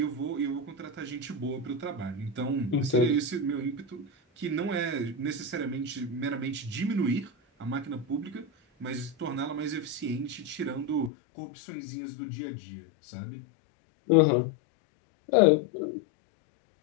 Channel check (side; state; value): right; drops out; at 11.1 s